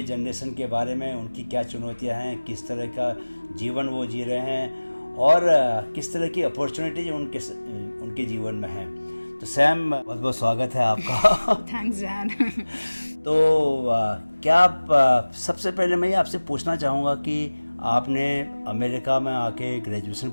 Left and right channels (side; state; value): both; inverted; correlation -1.00